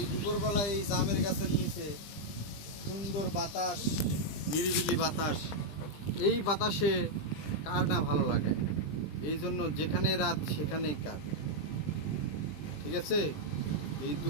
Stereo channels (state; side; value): late; right; 20 ms